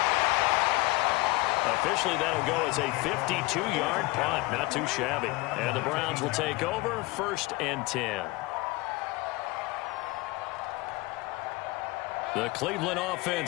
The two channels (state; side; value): quieter; right; 22.2 dB